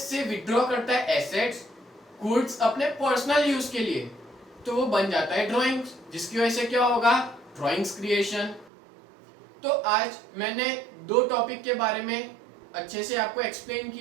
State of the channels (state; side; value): drops out; left; at 8.7 s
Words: से विड्रॉ करता है एसेट्स गुड्स अपने पर्सनल यूज के लिए, तो वो बन जाता है ड्राइंग्स, जिसकी वजह से क्या होगा, ड्राइंग्स क्रिएशन। तो आज मैंने दो टॉपिक के बारे में अच्छे से आपको एक्सप्लेन